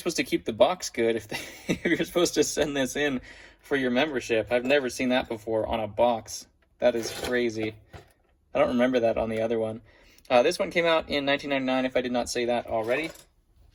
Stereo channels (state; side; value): identical; both; correlation 1.00